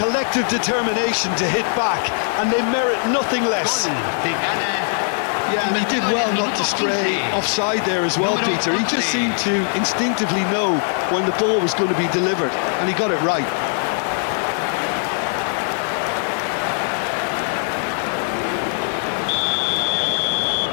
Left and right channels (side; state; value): right; silent; 65 dB below the other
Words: determination to hit back, and they merit nothing less. Yeah, and he did well not to stray offside there as well, Peter. He just seemed to instinctively know when the ball was going to be delivered, and he got it right.